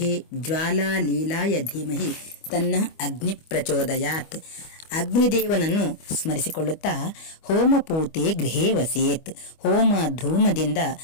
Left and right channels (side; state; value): right; late; 25 ms